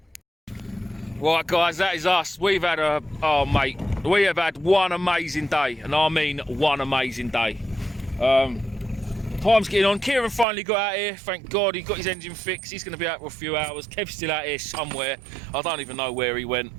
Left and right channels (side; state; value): left; drops out; at 10.5 s